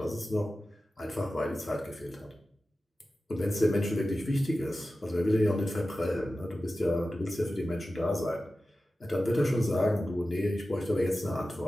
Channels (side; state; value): both; normal; correlation 0.94